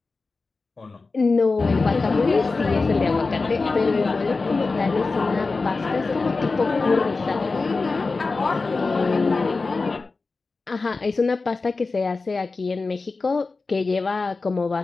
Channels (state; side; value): quieter; right; 3.9 dB